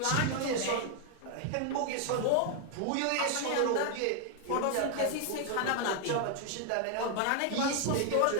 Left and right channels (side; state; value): both; different; correlation 0.00